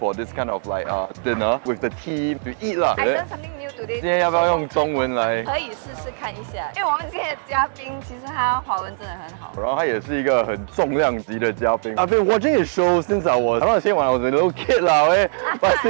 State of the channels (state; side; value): silent; left; digital silence